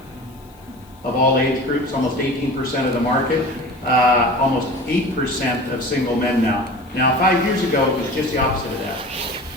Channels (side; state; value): left; noise; hiss, 30 dB below the sound